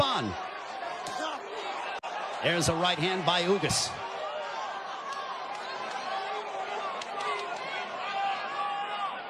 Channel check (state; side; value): identical; both; correlation 1.00